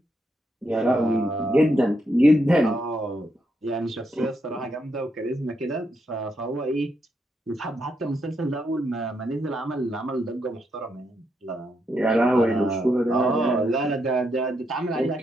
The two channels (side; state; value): both; normal; correlation 0.80